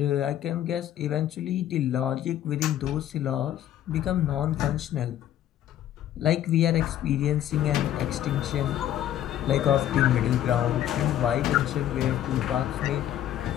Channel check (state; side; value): quieter; right; 11.8 dB